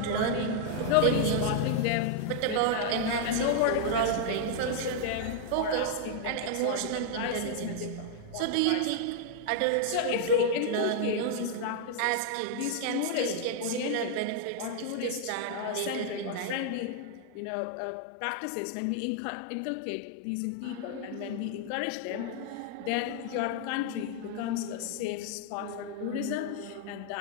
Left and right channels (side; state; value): both; different; correlation -0.01